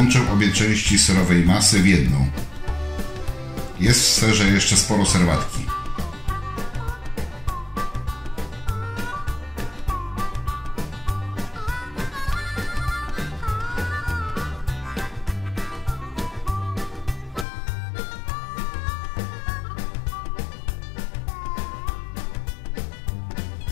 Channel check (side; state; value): right; drops out; at 17.4 s